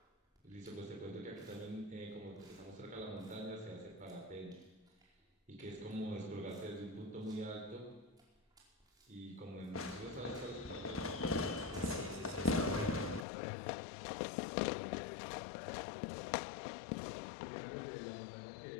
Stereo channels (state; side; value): drops out; right; at 13.2 s